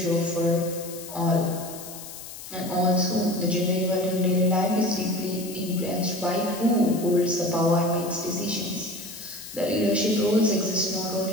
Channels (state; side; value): noise; left; hiss, 13 dB below the sound